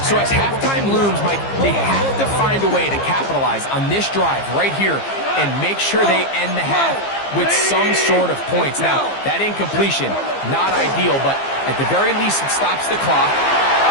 So as halftime looms, Mike, they have to find a way to capitalize on this drive right here and make sure they end the half with some sort of points. Now, that incompletion, not ideal, but at the very least, it stops the clock.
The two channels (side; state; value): right; late; 15 ms